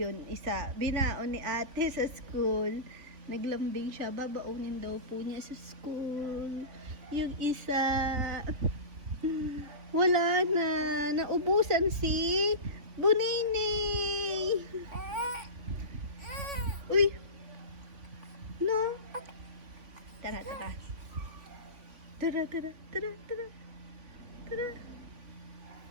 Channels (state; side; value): late; left; 3.5 ms